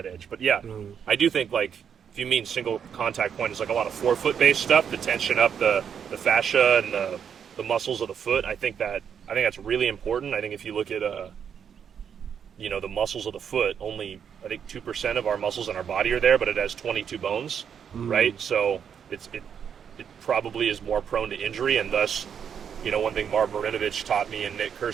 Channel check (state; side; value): quieter; left; 7.7 dB